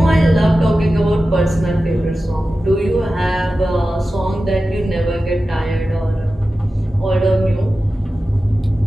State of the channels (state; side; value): normal; both; correlation 0.94